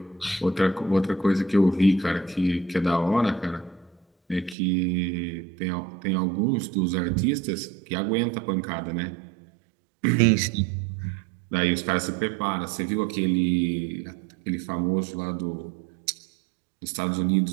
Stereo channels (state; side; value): drops out; left; at 4.5 s